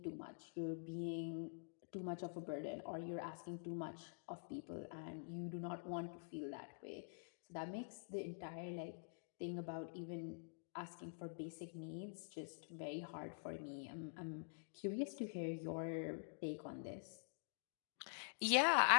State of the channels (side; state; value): right; silent; digital silence